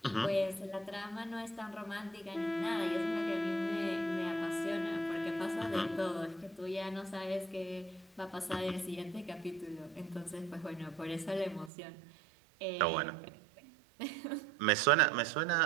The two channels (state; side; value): drops out; left; at 11.7 s